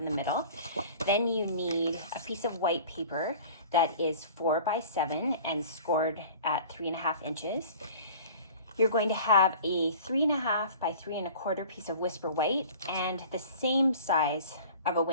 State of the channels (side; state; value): both; inverted; correlation -0.44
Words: the middle. Then you need a piece of white paper that is 4 by 7 and scored at 3.5 inches. You're going to have a 3.5 by 3.25 piece of Whisper White and the same size of a